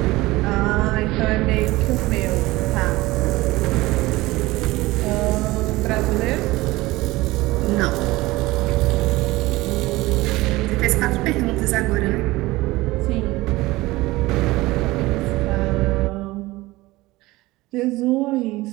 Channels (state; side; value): quieter; left; 19.6 dB